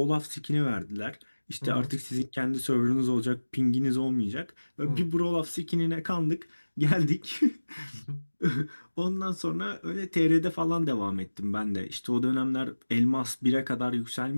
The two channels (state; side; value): inverted; both; correlation -1.00